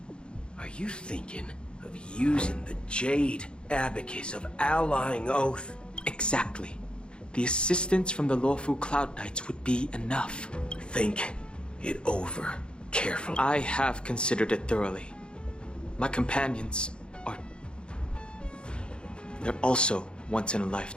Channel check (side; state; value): right; late; 0.053 ms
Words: Are you thinking of using the Jade Abacus of Allying Oath? Exactly. the assistance from the lawful Cloud Knights would be enough. Think it over carefully. I have considered it thoroughly. My companions are... they're also